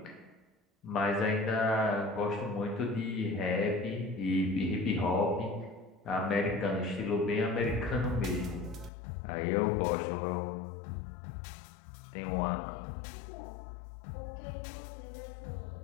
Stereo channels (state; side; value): drops out; right; at 8.9 s